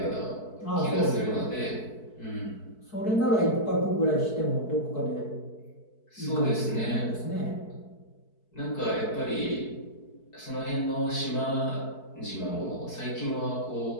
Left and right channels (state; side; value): late; right; 4.6 ms